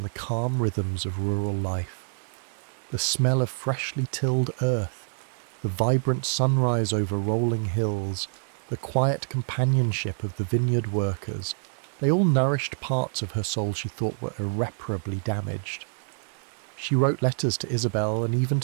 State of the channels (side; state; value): left; silent; digital silence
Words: the calm rhythms of rural life. The smell of freshly tilled earth, the vibrant sunrise over rolling hills, the quiet companionship of the vineyard workers, they all nourished parts of her soul she thought were irreparably damaged. She wrote letters to Isabel and even